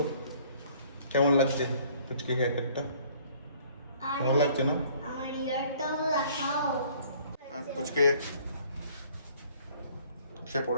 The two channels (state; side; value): inverted; both; correlation -0.57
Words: কেমন লাগছে পুচকে হেয়ার কাটটা? কেমন লাগছে না? আমার ইয়ারটাও দেখাও। পুচকে সে